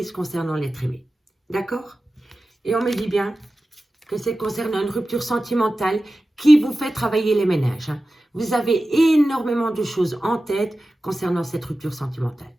concernant l'être aimé. D'accord? Et on me dit bien que c'est concernant une rupture sentimentale qui vous fait travailler les ménages. Vous avez énormément de choses en tête concernant cette rupture sentimentale.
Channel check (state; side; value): normal; both; correlation 0.95